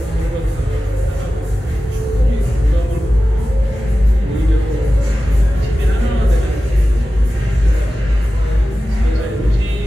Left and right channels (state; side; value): normal; both; correlation 0.94